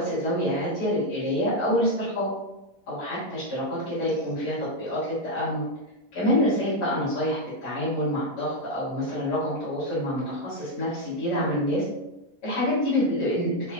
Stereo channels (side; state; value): right; late; 11 ms